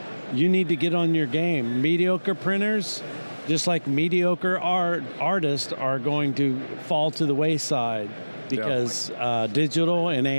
you need to get on your game. Mediocre printers, just like mediocre artists, are going to fall to the wayside because digital and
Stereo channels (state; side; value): inverted; both; correlation -1.00